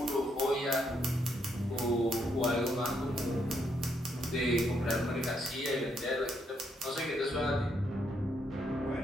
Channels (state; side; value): normal; both; correlation 0.75